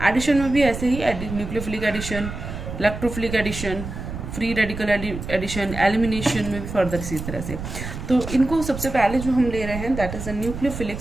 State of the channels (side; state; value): right; noise; rumble, 8 dB below the sound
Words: Addition में भी ऐसे ही, nucleophilic addition, electrophilic addition, free radical addition, elimination में भी फर्दर इसी तरह से। तो इनको सबसे पहले जो हम ले रहे हैं, that is a nucleophilic